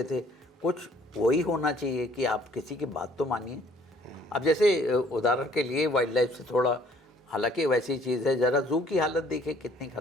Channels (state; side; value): normal; both; correlation 0.59